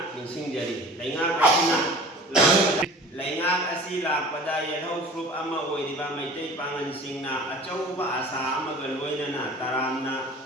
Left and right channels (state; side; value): normal; both; correlation 0.42